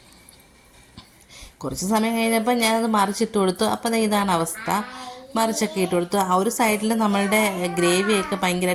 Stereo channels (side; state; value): both; identical; correlation 1.00